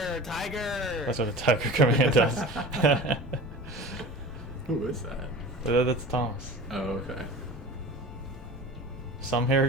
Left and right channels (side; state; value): both; normal; correlation 0.37